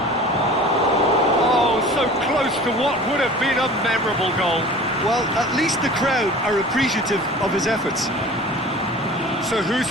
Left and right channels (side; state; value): both; normal; correlation 0.42